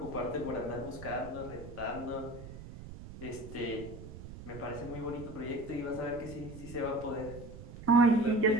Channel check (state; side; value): noise; right; rumble, 13 dB below the sound